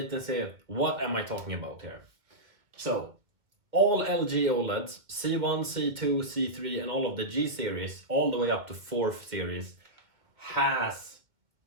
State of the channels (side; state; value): left; late; 2.1 ms